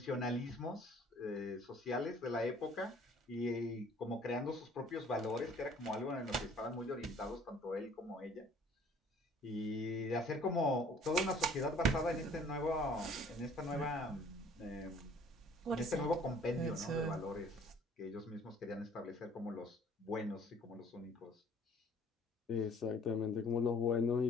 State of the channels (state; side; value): normal; both; correlation 0.55